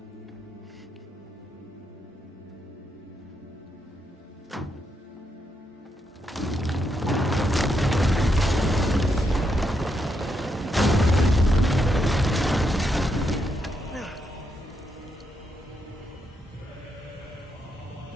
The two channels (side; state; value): both; normal; correlation 0.80